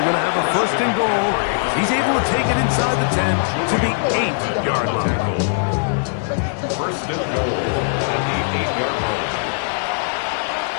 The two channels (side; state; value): right; silent; digital silence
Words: going to have a first and goal. He's able to take it inside the 10 to the 8-yard line. First and goal at the 8-yard line.